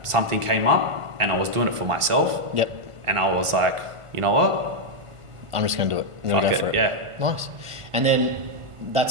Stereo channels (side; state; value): left; late; 1.5 ms